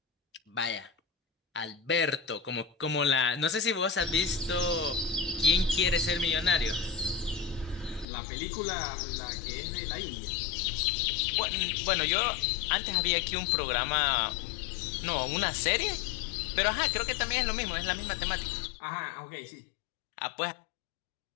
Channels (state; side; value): drops out; right; at 8.1 s